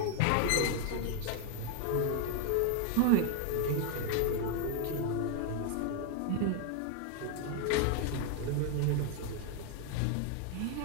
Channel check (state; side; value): different; both; correlation 0.00